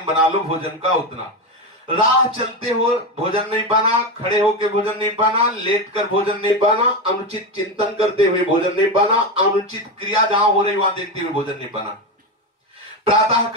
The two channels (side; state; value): both; normal; correlation 0.15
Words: बना लो भोजन का उतना। राह चलते हो भोजन नहीं पाना, खड़े होकर भोजन नहीं पाना, लेट कर भोजन नहीं पाना, अनुचित चिंतन करते हुए भोजन नहीं पाना, अनुचित क्रिया जहां हो रही वहां देखते हुए भोजन नहीं पाना। प्रातः